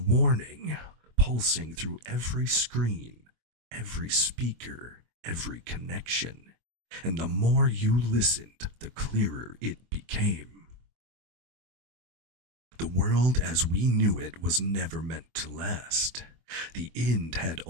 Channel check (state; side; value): late; left; 24 ms